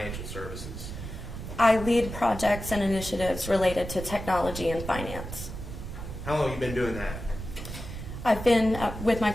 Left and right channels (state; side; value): noise; right; rumble, 8 dB below the sound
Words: services? I lead projects and initiatives related to technology and finance. How long have you been doing that? I've been with my